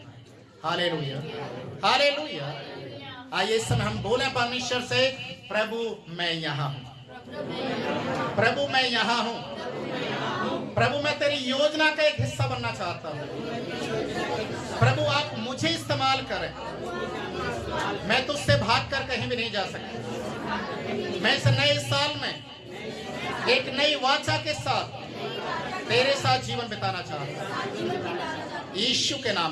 हालेलुया। हालेलुया। आइए इस समय हम बोले परमेश्वर से, प्रभु मैं यहाँ हूँ, प्रभु मैं यहाँ हूँ, प्रभु मैं तेरी योजना का एक हिस्सा बनना चाहता हूँ। प्रभु आप मुझे इस्तेमाल करें, मैं तुझसे भागकर कहीं भी नहीं जा सकता। मैं इस नए साल में एक नई वाचा के साथ तेरे साथ जीवन बिताना चाहता हूँ, यीशु के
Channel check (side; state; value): both; identical; correlation 1.00